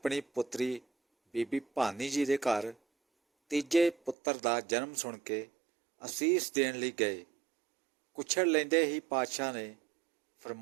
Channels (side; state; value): left; drops out; at 4.2 s